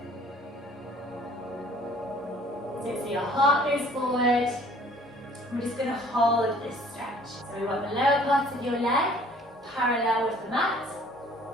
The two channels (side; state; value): both; normal; correlation 0.55